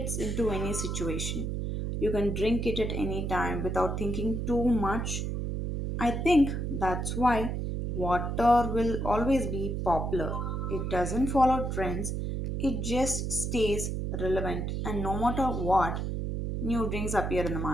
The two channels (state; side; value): noise; right; hum, 2 dB below the sound